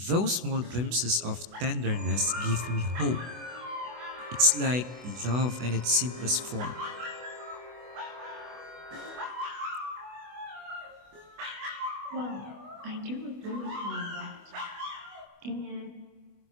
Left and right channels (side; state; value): left; late; 24 ms